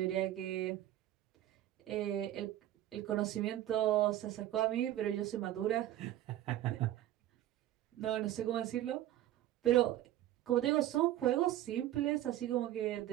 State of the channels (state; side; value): quieter; left; 13.3 dB